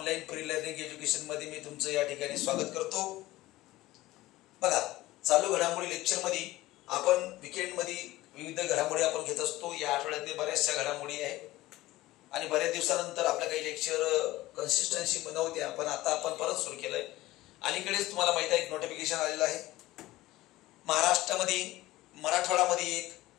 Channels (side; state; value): right; quieter; 17.4 dB